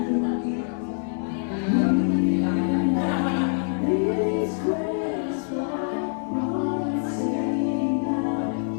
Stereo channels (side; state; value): right; silent; digital silence